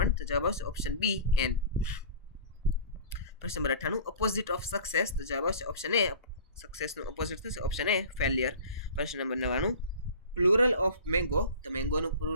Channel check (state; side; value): inverted; both; correlation -0.39